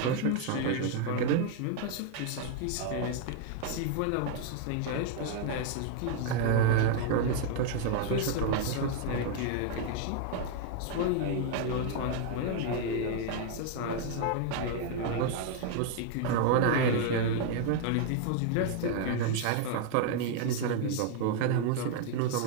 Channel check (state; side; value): different; both; correlation 0.00